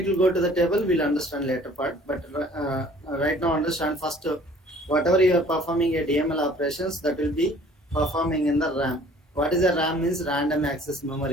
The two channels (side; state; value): both; normal; correlation 0.53